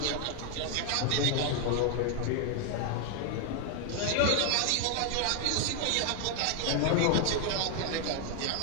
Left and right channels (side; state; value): both; different; correlation 0.00